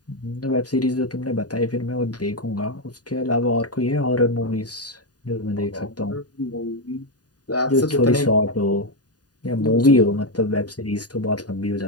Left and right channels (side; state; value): right; late; 0.68 ms